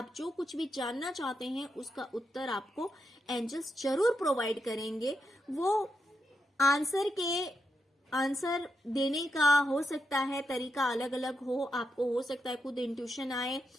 जो कुछ भी जानना चाहते हैं उसका उत्तर आपको एंजल्स जरूर प्रोवाइड करेंगे। वो आंसर देने का हो सकता है तरीका अलग अलग हो। आपको हो सकता है खुद इंट्यूशन आए,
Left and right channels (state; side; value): normal; both; correlation 0.84